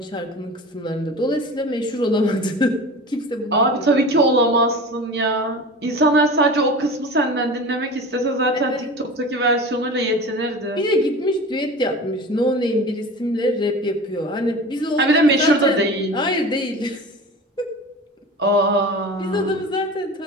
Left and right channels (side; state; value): both; normal; correlation 0.34